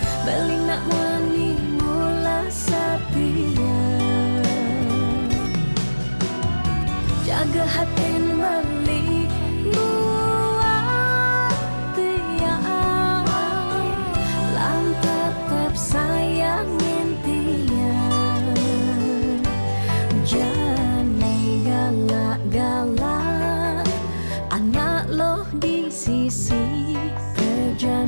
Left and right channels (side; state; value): both; inverted; correlation -1.00